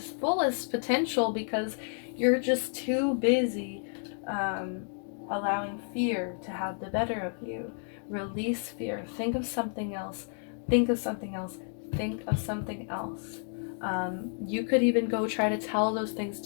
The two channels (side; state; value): right; silent; 57 dB below the other